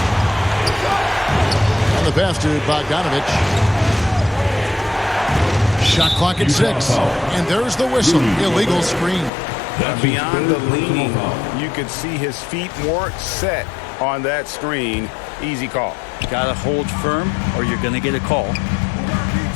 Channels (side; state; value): right; drops out; at 9.3 s